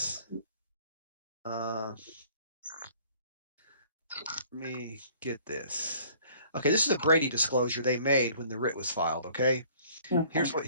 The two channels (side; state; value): both; inverted; correlation -0.54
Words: Let me get this. Okay, this is a Brady disclosure they made when the writ was filed. Okay, here's what